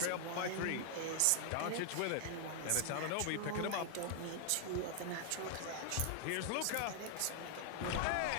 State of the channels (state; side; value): different; both; correlation 0.00